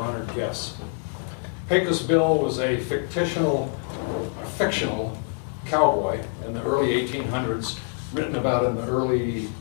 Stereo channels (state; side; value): silent; right; 61 dB below the other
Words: guests. Pecos Bill was a fictional cowboy in the early 1800s, written about in the early